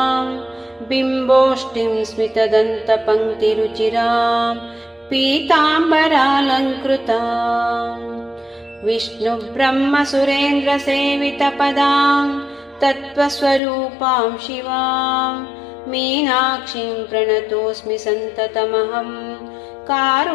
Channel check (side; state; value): right; drops out; at 13.6 s